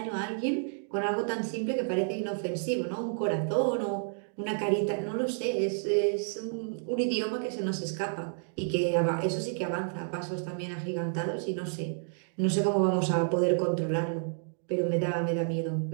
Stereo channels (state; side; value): silent; left; digital silence